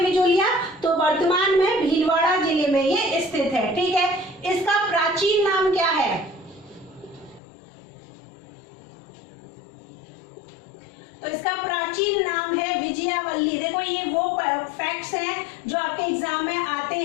बिजोलिया, तो वर्तमान में भीलवाड़ा जिले में ये स्थित है। ठीक है, इसका प्राचीन नाम क्या है, तो इसका प्राचीन नाम है विजयावल्ली। देखो ये वो फैक्ट्स हैं जो आपके एग्जाम में आते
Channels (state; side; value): drops out; right; at 7.4 s